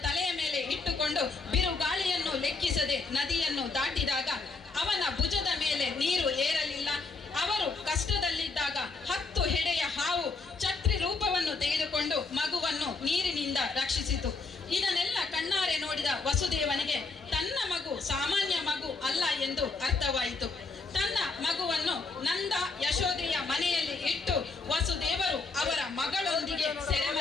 ತಲೆಯ ಮೇಲೆ ಇಟ್ಟುಕೊಂಡು ಬಿರುಗಾಳಿಯನ್ನು ಲೆಕ್ಕಿಸದೆ ನದಿಯನ್ನು ದಾಟಿದಾಗ ಅವನ ಭುಜದ ಮೇಲೆ ನೀರು ಏರಲಿಲ್ಲ. ಅವರು ಕಷ್ಟದಲ್ಲಿದ್ದಾಗ 10 ಹೆಡೆಯ ಹಾವು ಛತ್ರಿ ರೂಪವನ್ನು ತೆಗೆದುಕೊಂಡು ಮಗುವನ್ನು ನೀರಿನಿಂದ ರಕ್ಷಿಸಿತು. ಇದನ್ನೆಲ್ಲ ಕಣ್ಣಾರೆ ನೋಡಿದ ವಸುದೇವನಿಗೆ ತನ್ನ ಮಗು ಸಾಮಾನ್ಯ ಮಗು ಅಲ್ಲ ಎಂದು ಅರ್ಥವಾಯಿತು. ತನ್ನ ಮಗುವನ್ನು ನಂದ ಯಶೋದೆಯ ಮನೆಯಲ್ಲಿ ಇಟ್ಟು ವಸುದೇವರು ಅವರ ಮಗಳೊಂದಿಗೆ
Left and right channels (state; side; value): quieter; right; 4.0 dB